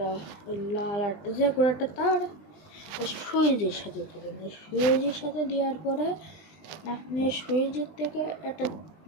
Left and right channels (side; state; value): right; late; 20 ms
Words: ওই লাল আটটা যে কোনো একটা তার সুইচের সাথে দেবেন। সুইচের সাথে দেওয়ার পরে আপনি সুইচের থেকে